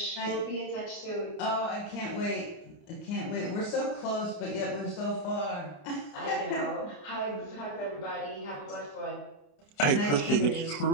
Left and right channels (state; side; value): late; right; 28 ms